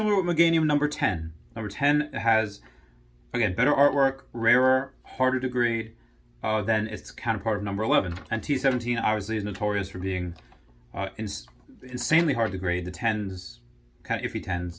with Meganium number 10. Number 10 has, again, better artwork, rarer, harder to grade than its counterpart of number 11. And T17 obviously is notorious for being insanely hard to grade. The 10s, kind of iffy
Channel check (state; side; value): identical; both; correlation 1.00